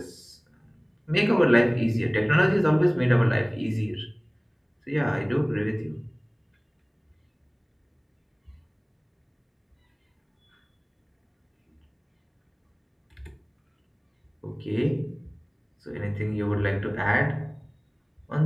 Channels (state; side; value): identical; both; correlation 1.00